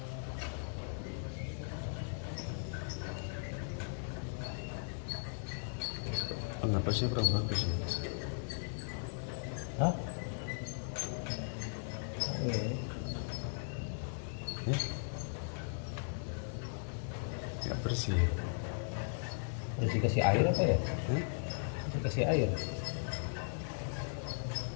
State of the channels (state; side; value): silent; right; 53 dB below the other